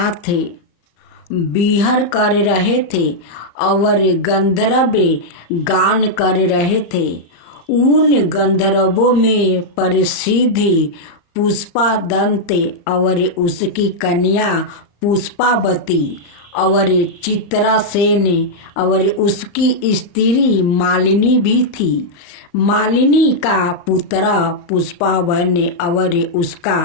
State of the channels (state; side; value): late; right; 35 ms